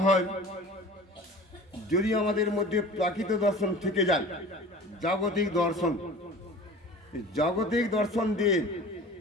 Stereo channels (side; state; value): both; normal; correlation 0.41